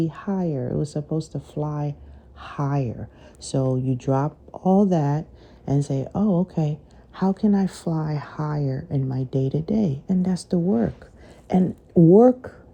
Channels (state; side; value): identical; both; correlation 1.00